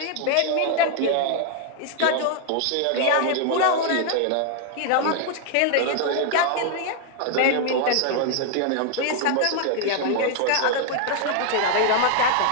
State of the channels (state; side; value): different; both; correlation 0.00